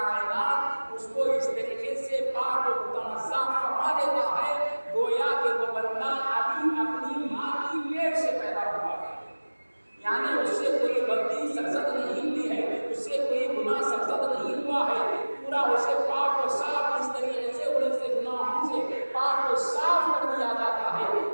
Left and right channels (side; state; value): both; inverted; correlation -1.00